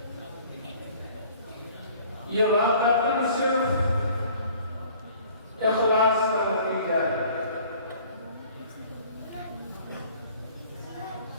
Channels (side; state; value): both; inverted; correlation -0.52